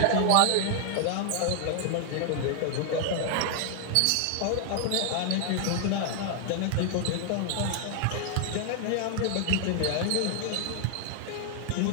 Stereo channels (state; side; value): different; both; correlation 0.00